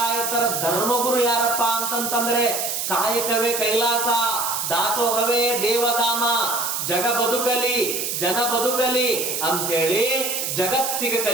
ಧರ್ಮಗುರು ಯಾರಪ್ಪ ಅಂತಂತಂದ್ರೆ ಕಾಯಕವೇ ಕೈಲಾಸ, ದಾಸೋಹವೇ ದೇವಧಾಮ, ಜಗ ಬದುಕಲಿ ಜನ ಬದುಕಲಿ ಅಂಥೇಳಿ ಜಗತ್ತಿಗೆ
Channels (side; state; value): right; noise; hiss, 2 dB below the sound